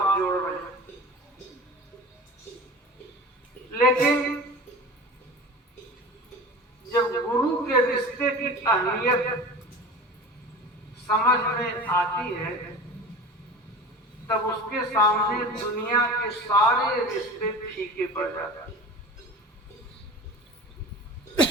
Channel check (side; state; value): both; normal; correlation 0.35